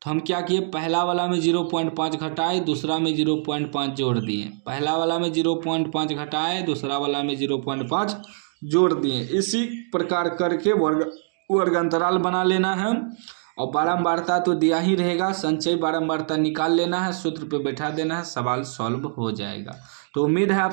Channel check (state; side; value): silent; left; digital silence